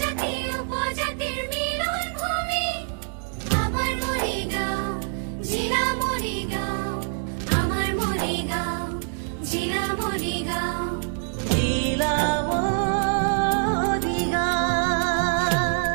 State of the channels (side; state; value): left; silent; 59 dB below the other